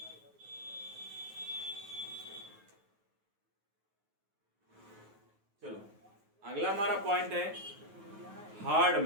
अगला हमारा पॉइंट है हार्ड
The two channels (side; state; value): left; late; 9.4 ms